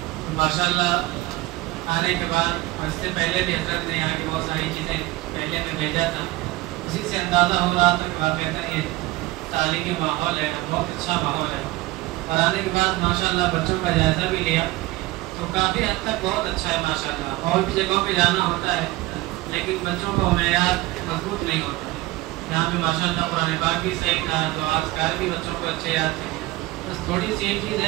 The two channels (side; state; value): left; quieter; 19.1 dB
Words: ماشاءاللہ آنے کے بعد اس سے پہلے بھی حضرت نے یہاں کی بہت ساری چیزیں پہلے میں بھیجا تھا، اسی سے اندازہ ہو رہا تھا کہ واقعتاً یہ تعلیمی ماحول ہے، بہت اچھا ماحول ہے۔ اور آنے کے بعد ماشاءاللہ بچوں کا جائزہ بھی لیا تو کافی حد تک بہت اچھا ہے ماشاءاللہ۔ اور بھی جگہوں پہ جانا ہوتا ہے لیکن بچوں کو معیار مضبوط نہیں ہوتا ہے، یہاں پہ ماشاءاللہ قرآن پاک بھی صحیح تھا، تو اذکار بھی بچوں کو اچھے یاد تھے۔ بس تھوڑی سی ایک چیز